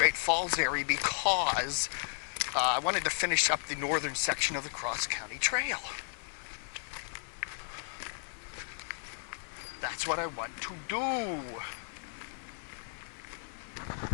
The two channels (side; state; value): right; silent; 55 dB below the other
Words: Falls area because I wanted to finish up the northern section of the Cross County Trail. That's what I want to do.